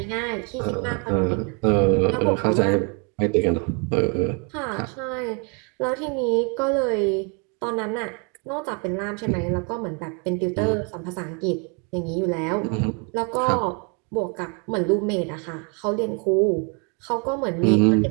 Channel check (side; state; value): left; quieter; 35.1 dB